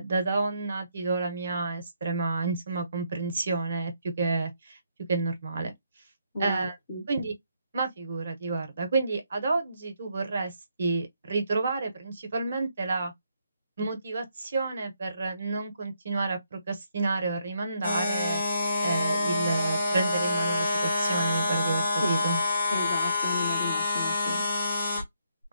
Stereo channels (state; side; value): inverted; both; correlation -0.75